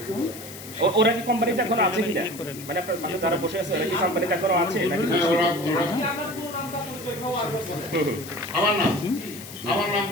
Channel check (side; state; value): left; noise; hiss, 14 dB below the sound